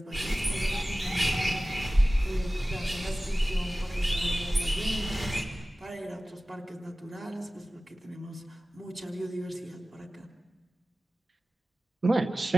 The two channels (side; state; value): both; normal; correlation 0.97